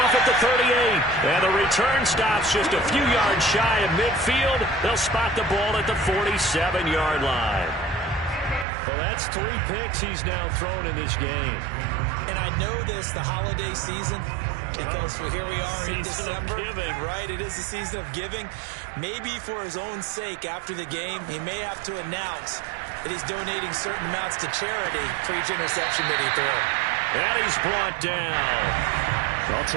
at the 38. And the return stops just a few yards shy of midfield. They'll spot the ball at the 47-yard line. Well, that's 3 picks he's now thrown in this game. And I know this, the holiday season, because here we are in December. Right, it is the season of giving. Maybe for his own sake after the game, he may have to announce that he's donating certain amounts to charity for each interception that he threw. And he's brought down. I'll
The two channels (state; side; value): drops out; left; at 8.7 s